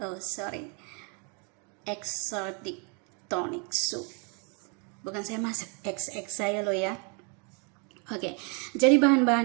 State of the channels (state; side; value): quieter; left; 35.8 dB